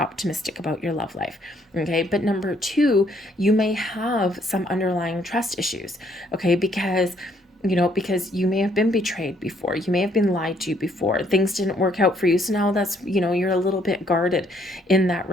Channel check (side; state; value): both; normal; correlation 0.68